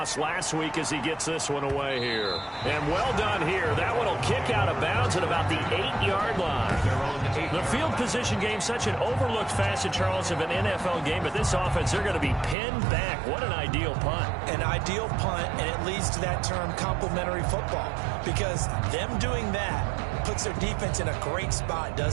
last week as he gets this one away here. And well done here. That one will kick out of bounds at about the 8-yard line. The field position game, such an overlooked facet, Charles, of an NFL game. But this offense, they're going to be pinned back. What an ideal punt. An ideal punt, and it leads to that term complementary football. Because them doing that puts their defense in a great spot,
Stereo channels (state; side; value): drops out; left; at 12.6 s